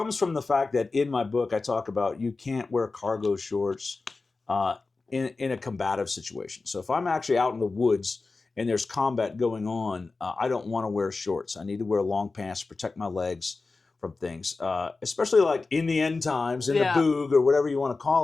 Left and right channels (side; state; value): right; quieter; 3.8 dB